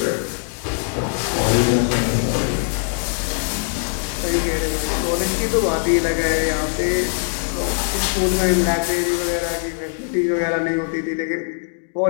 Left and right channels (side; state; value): right; silent; 65 dB below the other